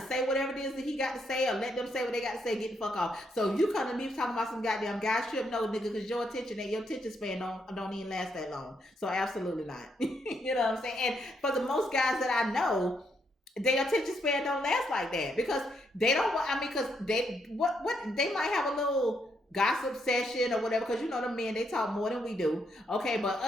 say whatever it is that he got to say, or let them say what they got to say, get the fuck off. So you come to me talking about some goddamn guys trip, no nigga, because your attention span don't even last that long. So absolutely not. You know what I'm saying? And for the most guys that I know, their attention span don't last like that, because they don't. Because they they might have a little gossip session or whatever, because the men, they talk more than we do. Okay, but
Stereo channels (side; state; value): both; normal; correlation 0.76